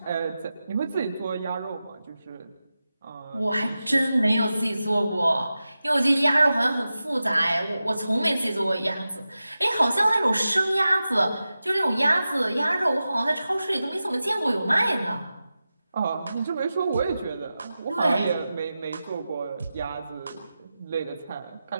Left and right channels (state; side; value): inverted; both; correlation -0.93